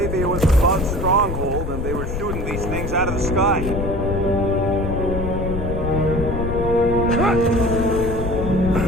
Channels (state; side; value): noise; left; rumble, 4 dB below the sound